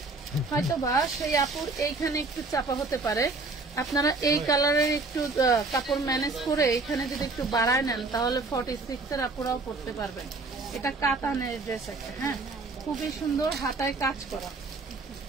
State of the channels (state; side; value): quieter; left; 3.6 dB